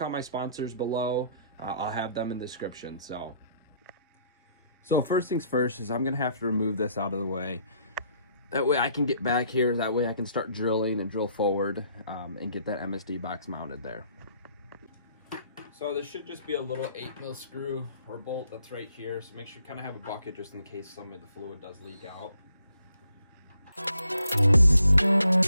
my sponsors below. I'll have them in the description. So first things first is I'm gonna have to remove this out of the way. That way I can get back here, that way I can start drilling and drill forward and get that MSD box mounted there. So this should just be a little 8mm screw or bolt that's right here. So make sure you kind of have a bucket just in case some of the fluid does leak out.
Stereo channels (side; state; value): both; inverted; correlation -0.67